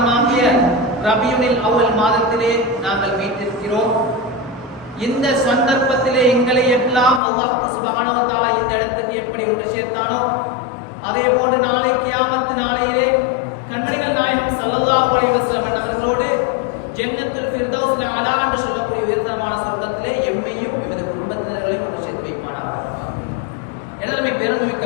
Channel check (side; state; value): right; drops out; at 7.2 s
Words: ரபியுனில் அவ்வல் மாதத்திலே நாங்கள் மீட்டிருக்கிறோம். இந்த சந்தர்ப்பத்திலே எங்களை எல்லாம் அல்லாஹ் சுப்ஹானஹு வ தஆலா இந்த இடத்துக்கு எப்படி ஒன்று சேர்த்தானோ, அதே போன்று நாளை கியாமத் நாளையிலே கண்மணிகள் நாயகம் ஸல்லல்லாஹு அலைஹி வஸல்லம் அவர்களோடு ஜன்னத்துல் ஃபிர்தௌஸ் அலா என்று சொல்லக்கூடிய உயர்தரமான சொர்க்கத்திலே எம்மையும் எமது குடும்பத்தினர்களையும் ஒன்று சேர்த்து வைப்பானார். எனவே பெருமைமிக்க